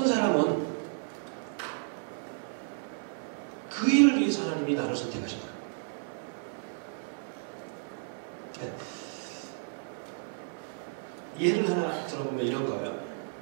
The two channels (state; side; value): silent; left; 56 dB below the other